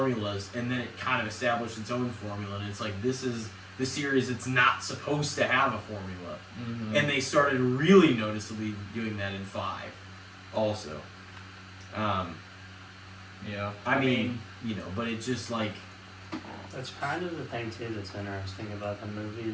and then it kind of established its own formula, and it's like, this is the series that's not supposed to have a formula. Mhm. And they started really noticeably doing that in 5 also. Yeah. I mean, but it's just like, That's kind of the thing too that's interesting about the movie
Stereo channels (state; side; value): identical; both; correlation 1.00